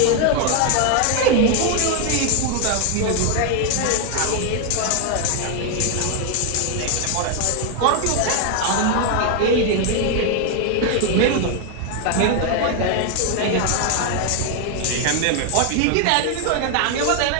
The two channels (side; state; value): both; different; correlation 0.00